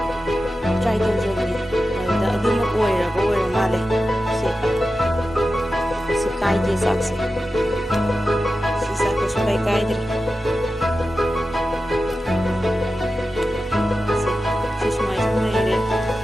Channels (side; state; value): both; normal; correlation 0.92